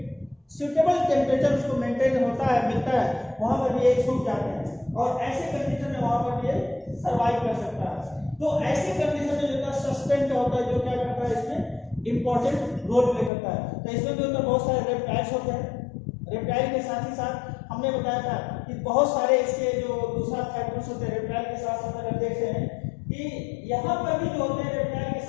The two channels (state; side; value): drops out; right; at 13.3 s